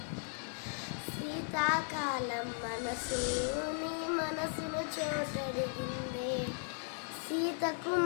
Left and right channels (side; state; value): right; silent; 53 dB below the other